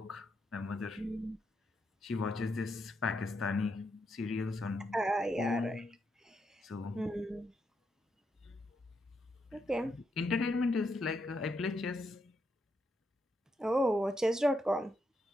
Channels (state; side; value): normal; both; correlation 0.81